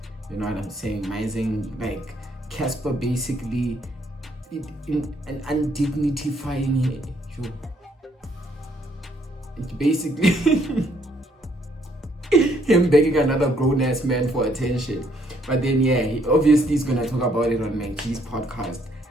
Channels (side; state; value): both; normal; correlation 0.68